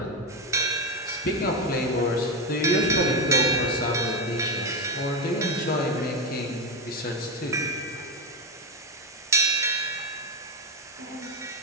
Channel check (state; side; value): normal; both; correlation 0.11